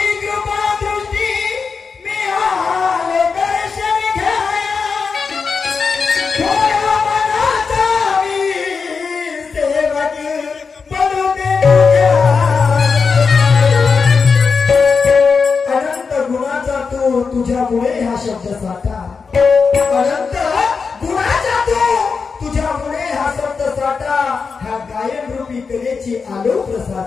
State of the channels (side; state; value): right; quieter; 5.2 dB